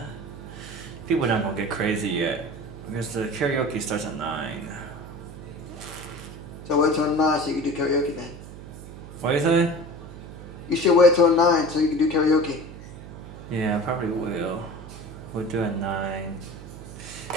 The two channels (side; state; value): right; noise; hum, 14 dB below the sound